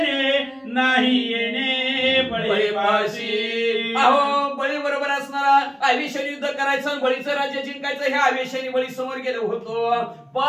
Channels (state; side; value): identical; both; correlation 1.00